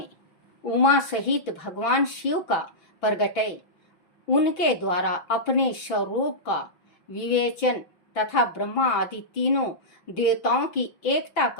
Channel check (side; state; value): right; late; 5.9 ms